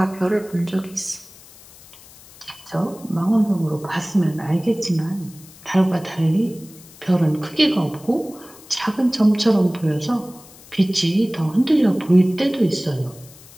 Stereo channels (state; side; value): noise; left; hiss, 22 dB below the sound